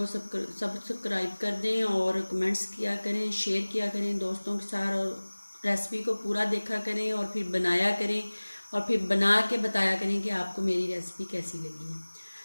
सब्सक्राइब कर दें और कमेंट्स किया करें, शेयर किया करें दोस्तों के साथ, और रेसिपी को पूरा देखा करें और फिर बनाया करें और फिर बना के बताया करें कि आपको मेरी रेसिपी कैसी लगी है।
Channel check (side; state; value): both; inverted; correlation -1.00